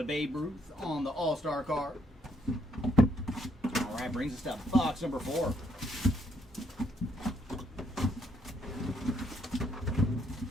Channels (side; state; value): both; normal; correlation 0.72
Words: Babe Ruth on the All-Star card. All right, brings us to box number 4.